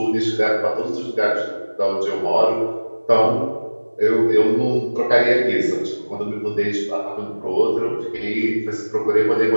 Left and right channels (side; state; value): both; inverted; correlation -1.00